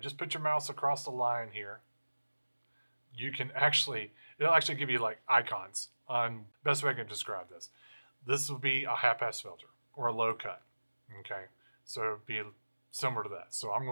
just put your mouse across the line here. You can it'll actually give you like icons on, best way I can describe this. This will be a high pass filter or a low cut. Okay. So it'd be similar to that. So I'm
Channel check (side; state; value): both; inverted; correlation -1.00